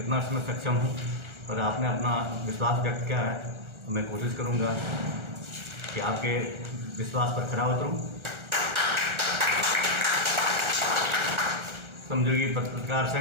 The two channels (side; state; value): left; late; 1.4 ms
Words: इसमें सक्षम हूं, और आपने अपना विश्वास व्यक्त किया है, तो मैं कोशिश करूंगा कि आपके विश्वास पर खरा उतरूं। श्रमजीवी पत्रकार